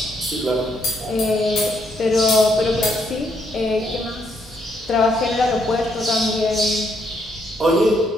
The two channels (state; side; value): normal; both; correlation 0.74